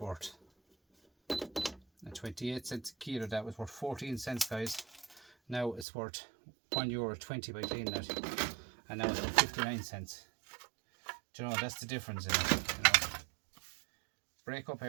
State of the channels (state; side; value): drops out; left; at 5.9 s